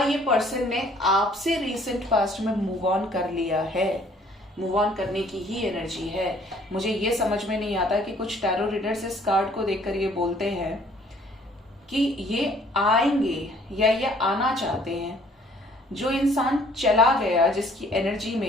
ये पर्सन ने आपसे रिसेंट पास्ट में मूव ऑन कर लिया है। मूव ऑन करने की ही एनर्जी है। मुझे ये समझ में नहीं आता कि कुछ टैरो रीडर्स इस कार्ड को देखकर ये बोलते हैं कि ये आएंगे या ये आना चाहते हैं। जो इंसान चला गया, जिसकी एनर्जी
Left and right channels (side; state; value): both; normal; correlation 0.59